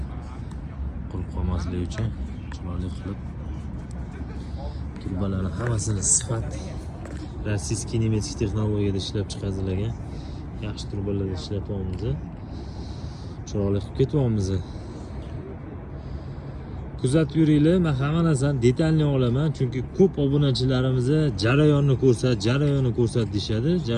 qurib qolmasligi uchun chiroyli qilib turbalarni hammasini sifat rossiyskiy nemetik texnologiyada ishlab chiqarilgan yaxshi turbalarda ishlatyapmiz. Chiroyli qilib ketyapmiz. Kuzatib yuringlar, men hamma narsani detalni olaman, chunki ko'p obunachilarimiz jarayonni ko'rsat deyshadi.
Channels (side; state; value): both; identical; correlation 1.00